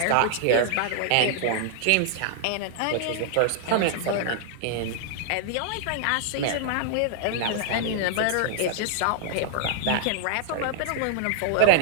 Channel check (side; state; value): both; different; correlation -0.01